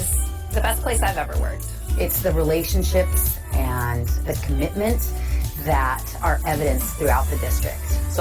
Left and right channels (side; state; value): both; identical; correlation 1.00